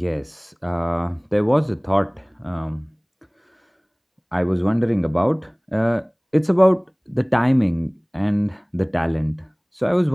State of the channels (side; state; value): both; identical; correlation 1.00